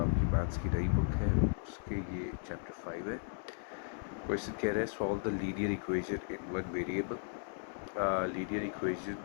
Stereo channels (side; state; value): right; silent; digital silence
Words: मैथ्स की नई बुक है उसके ये चैप्टर 5 है। क्वेश्चन कह रहा है solve the linear equation in one variable. Linear equation